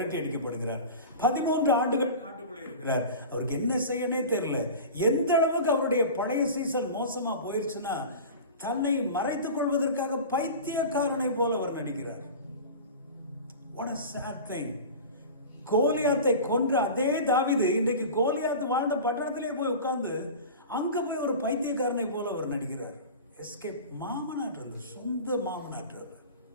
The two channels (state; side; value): inverted; both; correlation -0.33